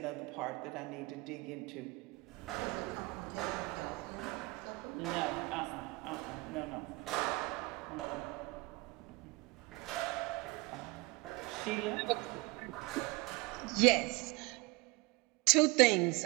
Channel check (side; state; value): left; quieter; 25.0 dB